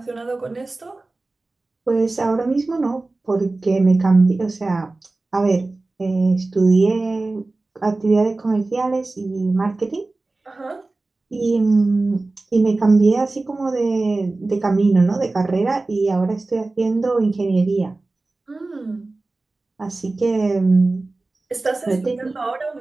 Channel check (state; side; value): quieter; left; 3.2 dB